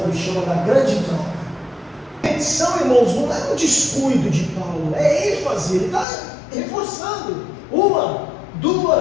chama da grande troca. A petição, irmãos, não é um descuido de Paulo, é ênfase, ele está reforçando 1,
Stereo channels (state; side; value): drops out; right; at 6.1 s